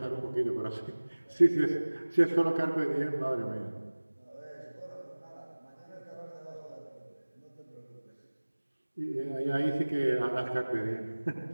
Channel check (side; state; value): both; inverted; correlation -1.00